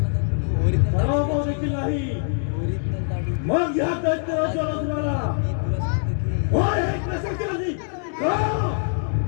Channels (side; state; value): right; silent; digital silence